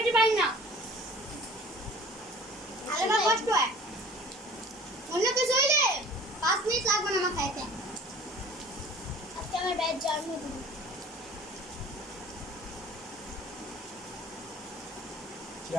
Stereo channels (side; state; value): both; normal; correlation 0.47